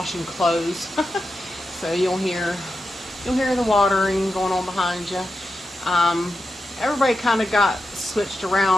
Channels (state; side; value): normal; both; correlation 0.89